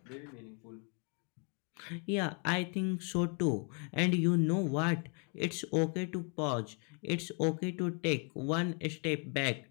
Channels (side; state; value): right; quieter; 38.2 dB